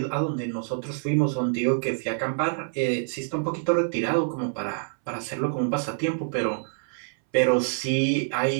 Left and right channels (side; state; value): left; silent; 61 dB below the other